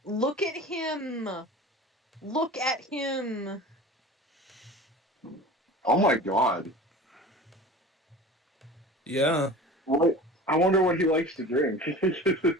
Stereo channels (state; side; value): normal; both; correlation 0.38